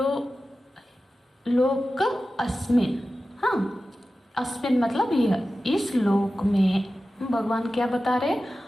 लोक अस्मिन्, हाँ अस्मिन् मतलब यह, इस लोक में। भगवान क्या बता रहे,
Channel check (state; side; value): normal; both; correlation 0.94